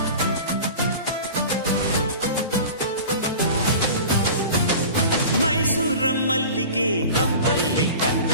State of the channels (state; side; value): inverted; both; correlation -0.37